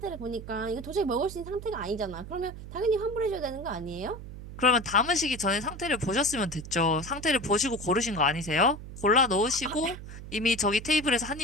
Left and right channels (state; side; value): noise; right; hum, 12 dB below the sound